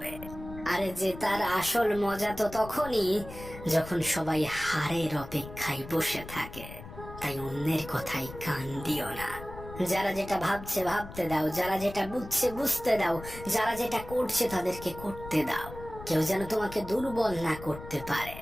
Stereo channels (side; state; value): left; noise; rumble, 13 dB below the sound